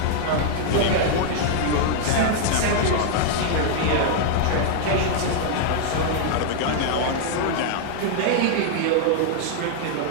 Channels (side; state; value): both; different; correlation -0.01